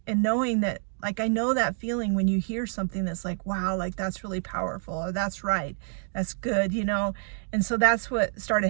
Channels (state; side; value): silent; left; 60 dB below the other